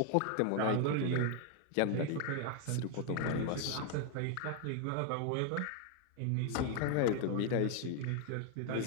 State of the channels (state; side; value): different; both; correlation 0.00